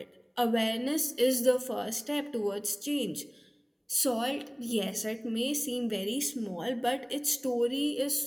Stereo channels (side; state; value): both; identical; correlation 1.00